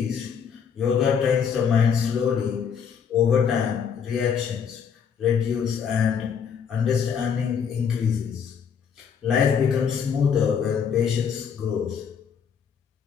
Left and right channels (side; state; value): right; quieter; 7.1 dB